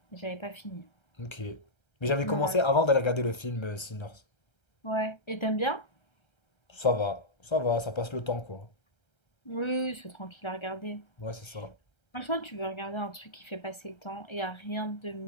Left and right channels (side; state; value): right; late; 1.3 ms